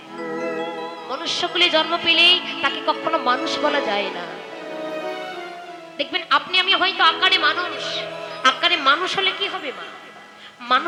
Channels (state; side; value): identical; both; correlation 1.00